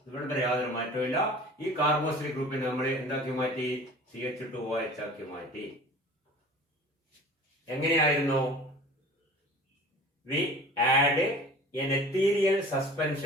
ഇവിടെ യാതൊരു മാറ്റമില്ല. ഈ കാർബോക്സിൽ ഗ്രൂപ്പിനെ നമ്മൾ എന്താക്കി മാറ്റി? CH2OH ആക്കി മാറ്റി. എങ്ങനെയായിരുന്നു? We add an ethereal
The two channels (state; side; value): normal; both; correlation 0.42